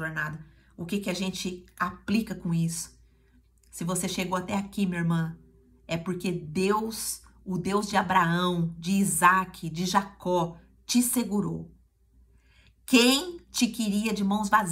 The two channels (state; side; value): identical; both; correlation 1.00